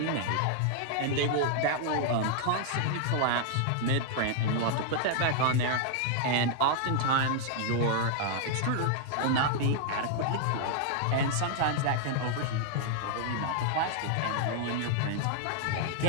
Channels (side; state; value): both; different; correlation 0.00